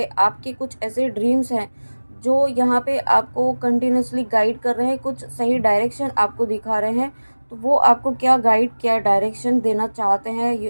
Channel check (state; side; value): inverted; both; correlation -1.00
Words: आपके कुछ ऐसे ड्रीम्स हैं जो यहाँ पे आपको कंटिन्यूसली गाइड कर रहे हैं, कुछ सही डायरेक्शन आपको दिखा रहे हैं। तो वो आपको क्या गाइड, क्या डायरेक्शन देना चाहते हैं,